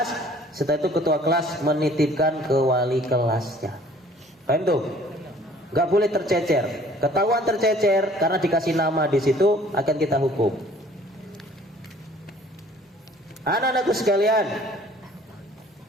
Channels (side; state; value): both; normal; correlation 0.54